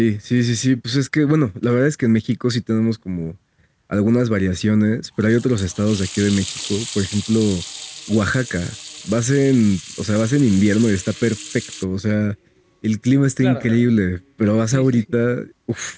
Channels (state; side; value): identical; both; correlation 1.00